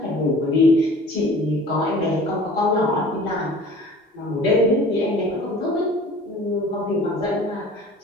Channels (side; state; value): both; normal; correlation 0.45